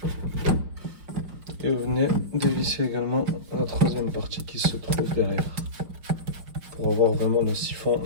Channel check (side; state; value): left; late; 5.5 ms